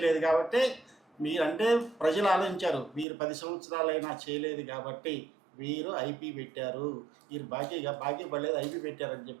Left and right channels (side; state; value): left; drops out; at 3.1 s